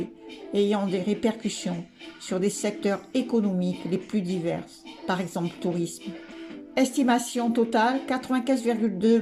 ayant des répercussions sur des secteurs économiques les plus divers, par exemple le tourisme. Estimation totale, 95,2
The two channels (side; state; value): both; identical; correlation 1.00